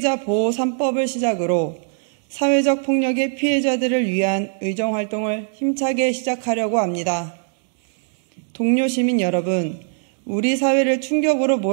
보호 3법을 시작으로 사회적 폭력의 피해자들을 위한 의정활동을 힘차게 시작하려고 합니다. 동료 시민 여러분, 우리 사회를 충격으로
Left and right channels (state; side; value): silent; left; digital silence